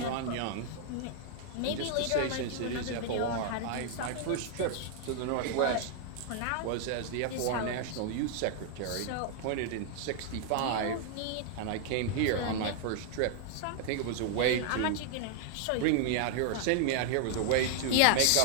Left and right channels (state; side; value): different; both; correlation 0.00